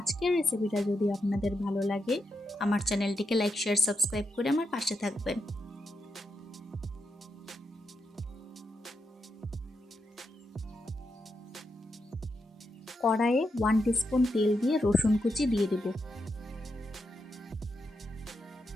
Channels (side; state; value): both; normal; correlation 0.84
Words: রেসিপিটা যদি আপনাদের ভালো লাগে, আমার চ্যানেলটিকে লাইক, শেয়ার, সাবস্ক্রাইব করে আমার পাশে থাকবেন। কড়াইয়ে 1 টিস্পুন তেল দিয়ে রসুন কুচি দিয়ে দেব।